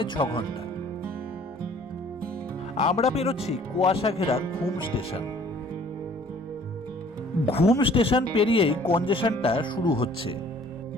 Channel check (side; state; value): both; normal; correlation 0.55